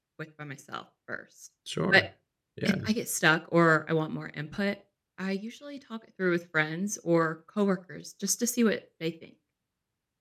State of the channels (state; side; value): identical; both; correlation 1.00